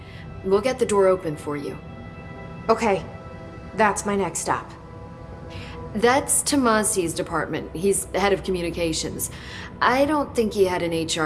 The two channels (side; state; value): both; identical; correlation 1.00